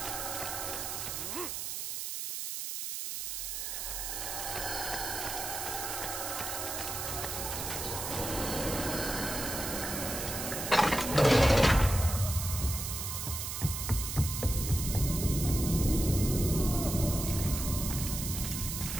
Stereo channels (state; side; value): noise; right; hiss, 4 dB below the sound